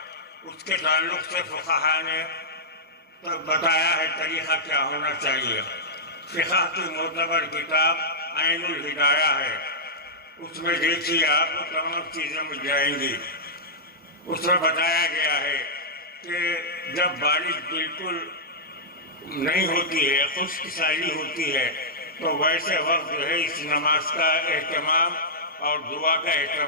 اس کے تعلق سے فقہا نے بتایا ہے طریقہ کیا ہونا چاہیے۔ فقہ کی معتبر کتاب عین الہدایہ ہے، اس میں دیکھیے آپ کو تمام چیزیں مل جائیں گی۔ اس میں بتایا گیا ہے کہ جب بارش بالکل نہیں ہوتی ہے، خشک سالی ہوتی ہے، تو ویسے وقت جو ہے اس نماز کا اہتمام اور دعا کا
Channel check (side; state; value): both; normal; correlation -0.11